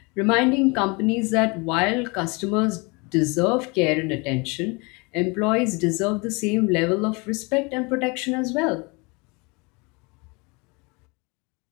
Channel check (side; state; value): right; quieter; 28.6 dB